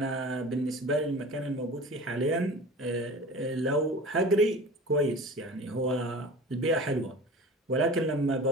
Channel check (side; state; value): both; normal; correlation 0.38